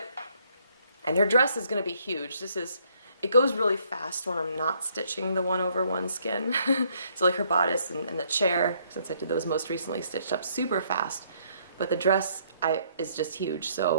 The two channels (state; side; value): inverted; both; correlation -0.68